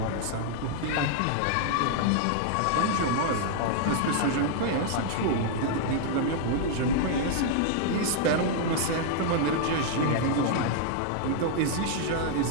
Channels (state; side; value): different; both; correlation -0.01